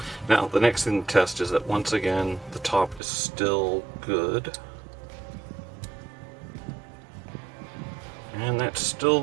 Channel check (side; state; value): left; drops out; at 3.0 s